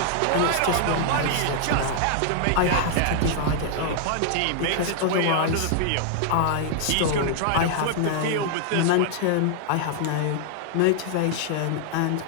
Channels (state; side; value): different; both; correlation 0.00